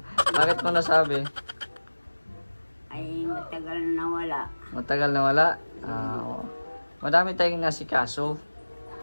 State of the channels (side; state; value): both; inverted; correlation -1.00